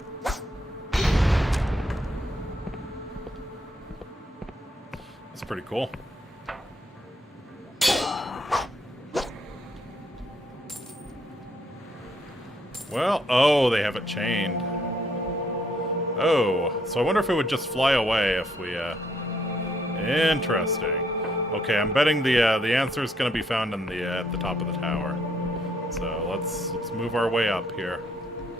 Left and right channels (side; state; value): both; normal; correlation 0.71